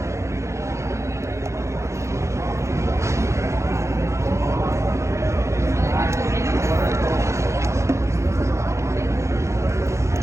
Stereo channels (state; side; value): late; left; 0.14 ms